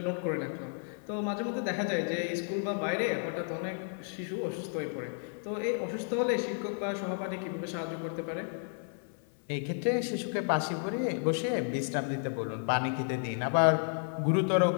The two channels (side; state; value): right; silent; 56 dB below the other